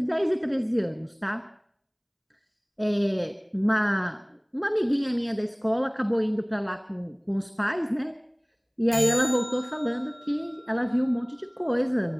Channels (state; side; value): identical; both; correlation 1.00